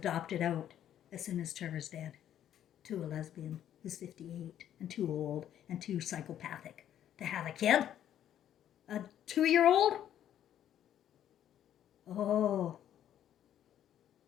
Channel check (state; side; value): quieter; right; 10.8 dB